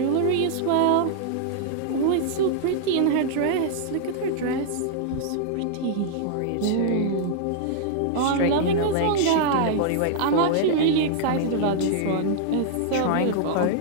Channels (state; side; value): different; both; correlation -0.01